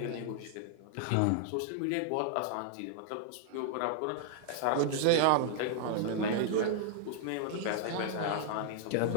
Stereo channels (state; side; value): different; both; correlation -0.01